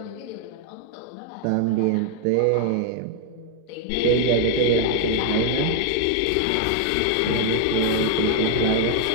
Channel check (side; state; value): both; different; correlation 0.00